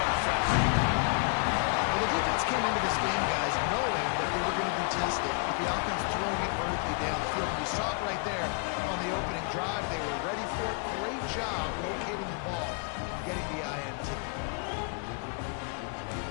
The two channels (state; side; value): quieter; right; 38.9 dB